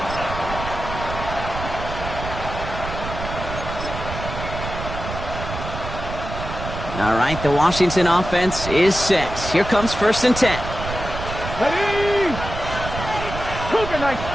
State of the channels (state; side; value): noise; right; rumble, 7 dB below the sound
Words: All right, the Washington offense is set. Here comes 1st and 10. Ready! Cougar Knight,